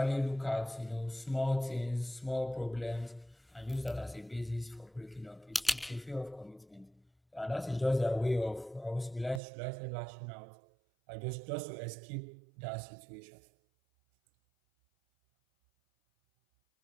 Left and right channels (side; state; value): left; drops out; at 9.4 s